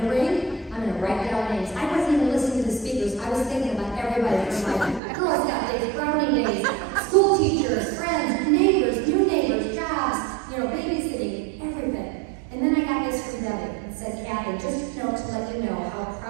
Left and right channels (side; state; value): left; drops out; at 5.0 s